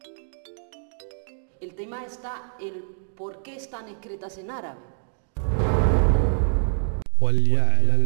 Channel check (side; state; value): left; silent; digital silence